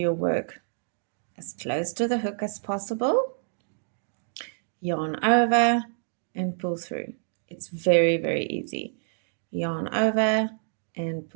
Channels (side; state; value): left; silent; digital silence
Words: work as close to the hook as possible, yarn over, and pull through. It's very easy. Yarn over and